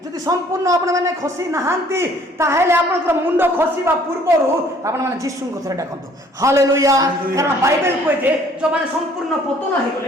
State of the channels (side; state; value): both; normal; correlation 0.58